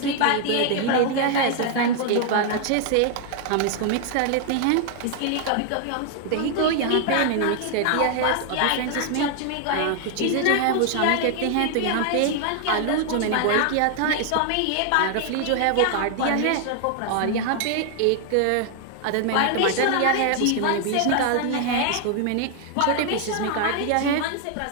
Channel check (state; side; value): different; both; correlation 0.00